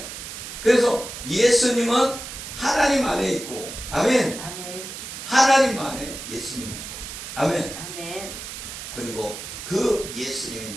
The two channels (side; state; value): right; noise; hiss, 9 dB below the sound